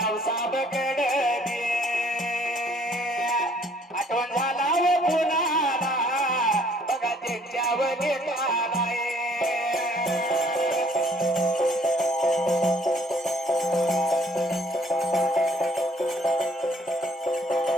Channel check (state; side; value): normal; both; correlation 0.61